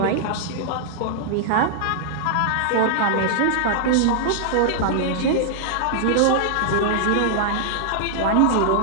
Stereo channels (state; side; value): different; both; correlation -0.01